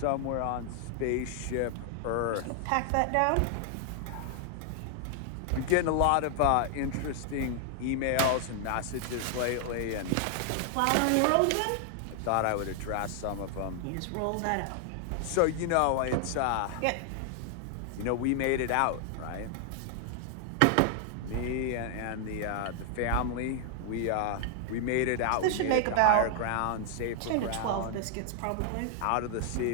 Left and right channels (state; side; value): different; both; correlation 0.00